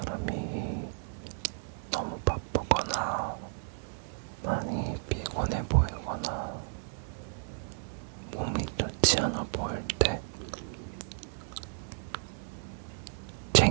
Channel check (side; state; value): left; silent; 56 dB below the other